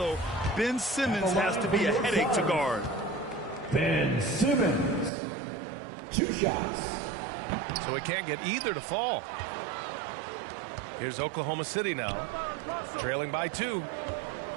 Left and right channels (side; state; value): left; drops out; at 5.1 s